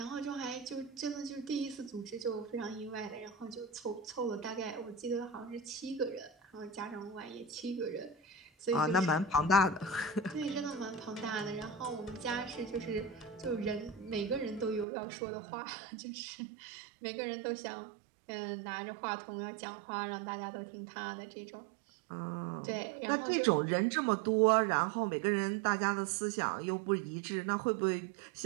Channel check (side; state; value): left; drops out; at 14.9 s